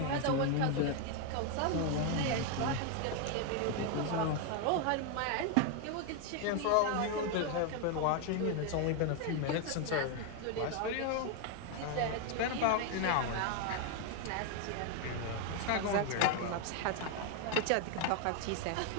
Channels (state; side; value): different; both; correlation 0.01